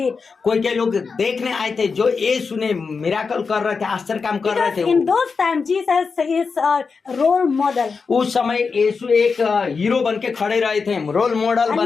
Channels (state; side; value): quieter; right; 5.0 dB